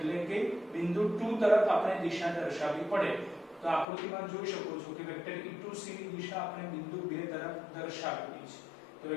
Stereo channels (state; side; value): drops out; right; at 3.9 s